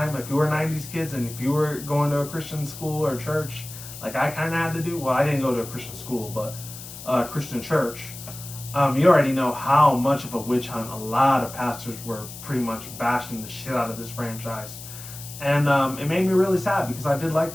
if you were 90s kids and if you were going to a Christian school or church, like I kind of had to do, well, I didn't go to a Christian school, but Christian church, you already know how much of a witch hunt a lot of pastors were pretty much bashing the shit out of this franchise. And it made me really sad because I did like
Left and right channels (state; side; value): noise; left; hiss, 13 dB below the sound